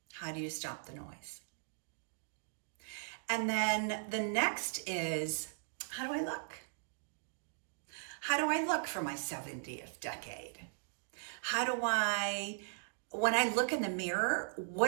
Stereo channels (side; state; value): left; silent; digital silence